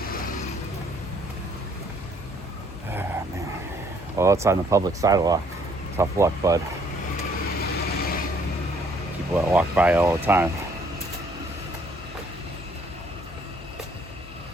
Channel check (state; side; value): noise; left; hum, 17 dB below the sound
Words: Ah, man. Well, it's on the public sidewalk. Tough luck, bud. People that walk by all the time.